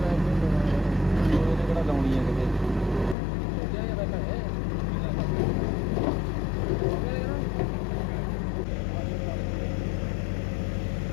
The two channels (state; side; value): drops out; right; at 3.2 s